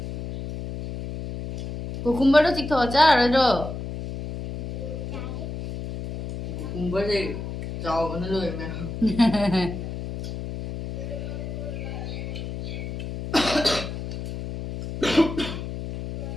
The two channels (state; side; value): noise; left; hum, 7 dB below the sound